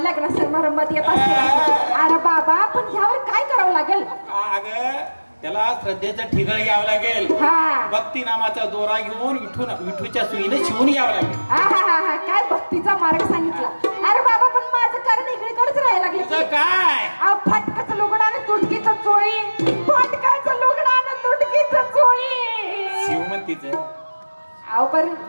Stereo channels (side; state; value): both; inverted; correlation -1.00